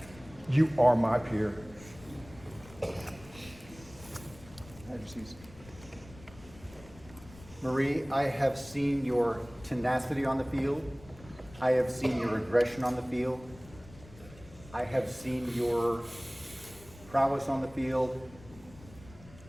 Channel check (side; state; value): left; noise; rumble, 20 dB below the sound